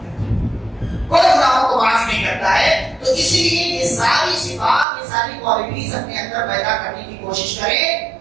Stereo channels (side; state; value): left; drops out; at 4.9 s